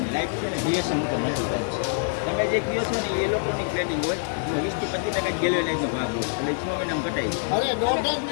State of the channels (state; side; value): silent; right; digital silence